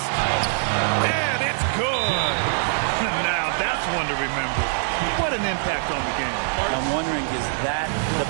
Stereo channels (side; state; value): left; silent; digital silence